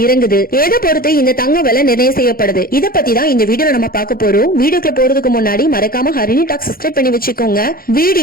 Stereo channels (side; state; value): right; late; 0.42 ms